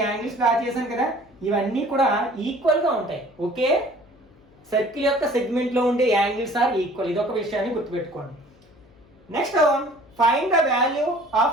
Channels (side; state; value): left; noise; hum, 29 dB below the sound